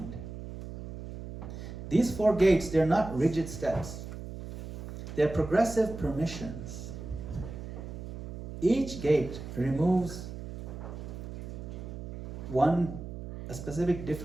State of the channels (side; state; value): right; noise; hum, 9 dB below the sound